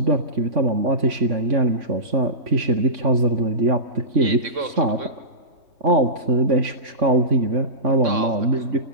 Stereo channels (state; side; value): late; left; 3.6 ms